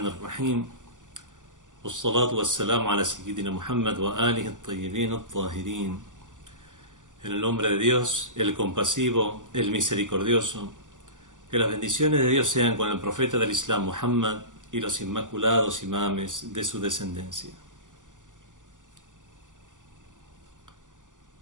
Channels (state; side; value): late; left; 0.87 ms